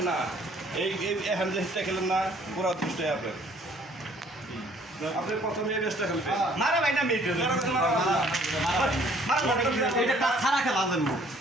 না এই এখন যে হিটটা খেলেন না পুরো দুষ্ট আপনার আপনি প্রথমে এই ম্যাচটা খেলবেন মারা ভাই না মেয়ে মারা এটা ছাড়া খেলা দেন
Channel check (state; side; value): normal; both; correlation 0.59